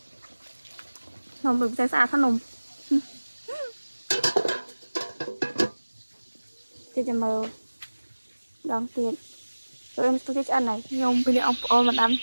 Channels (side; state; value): both; inverted; correlation -1.00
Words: nông được sai xa thân nông cho mơ đón tiền tụi em tôi ăn này nhung bây giờ ông ôn mà ăn